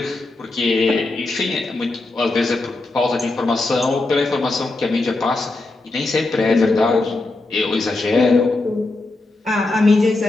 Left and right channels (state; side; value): quieter; right; 3.1 dB